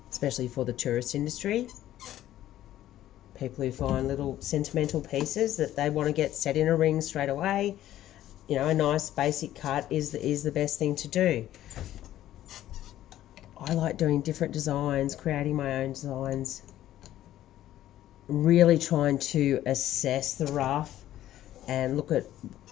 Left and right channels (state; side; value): quieter; right; 13.1 dB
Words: especially for the tourist industry. People who find little sentimental pieces that they want to get set in a ring straight away, you know, a nice basic cut is the best thing to do. I like doing different designs, creating my own designs, really trying to assess the rough and look at